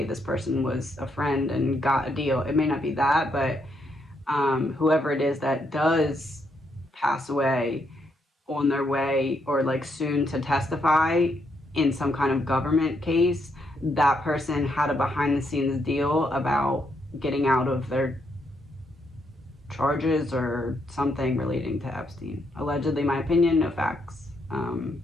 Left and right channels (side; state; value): both; normal; correlation 0.76